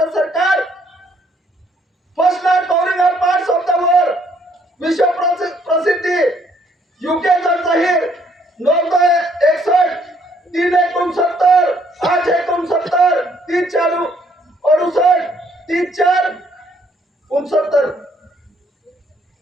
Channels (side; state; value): both; normal; correlation 0.66